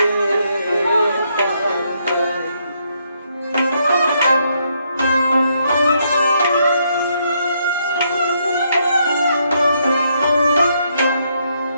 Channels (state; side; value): inverted; both; correlation -0.75